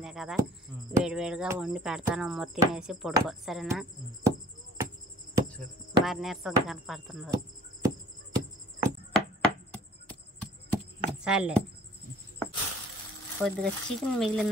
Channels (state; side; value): normal; both; correlation 0.54